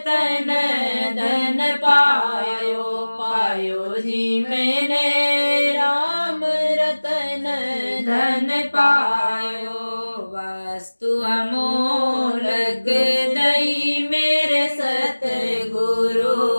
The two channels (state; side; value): inverted; both; correlation -1.00